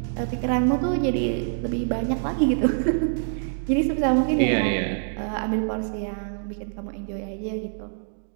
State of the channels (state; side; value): silent; left; digital silence